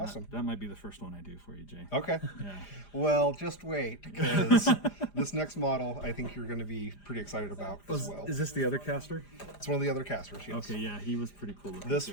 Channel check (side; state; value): right; late; 4.9 ms